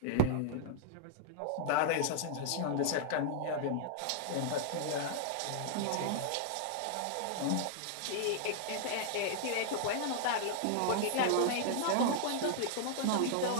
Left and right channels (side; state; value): both; different; correlation -0.01